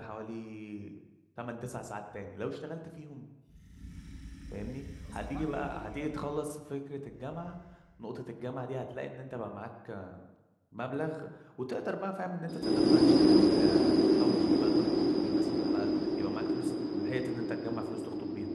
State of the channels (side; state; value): both; identical; correlation 1.00